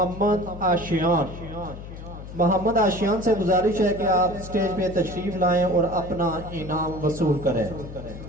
आशियान। मोहम्मद आशियान से गुजारिश है कि आप स्टेज पे तशरीफ लाएं और अपना इनाम वसूल करें।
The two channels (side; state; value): left; noise; hum, 12 dB below the sound